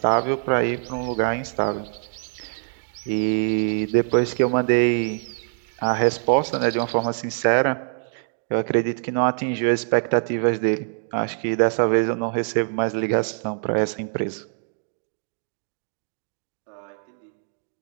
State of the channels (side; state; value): left; silent; digital silence